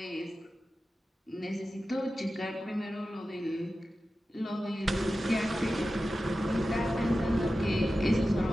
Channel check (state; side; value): normal; both; correlation 0.93